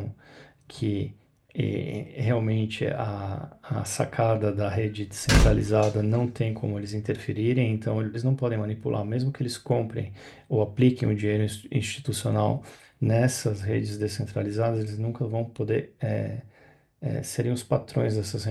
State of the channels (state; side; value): identical; both; correlation 1.00